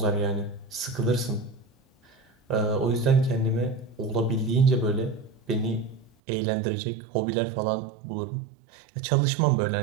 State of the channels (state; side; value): drops out; left; at 6.1 s